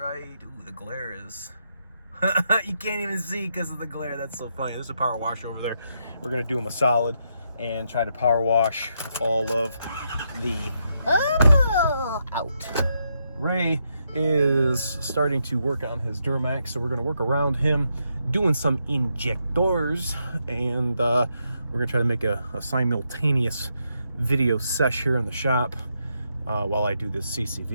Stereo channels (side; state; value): both; inverted; correlation -0.80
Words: ooh, the glare is, you can't even see because of the glare. That's so funny. There's a power washer over there. We're gonna do them a solid and try to power wash all of the out. Ray is starting to work on his Duramax, so we're going to work around him doing some injectors, and we're going to try to make a simultaneous video sesh here in the shop while I do this